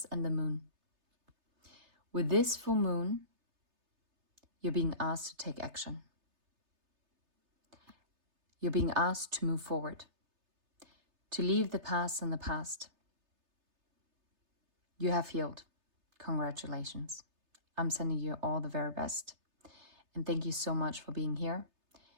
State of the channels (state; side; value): late; left; 3.3 ms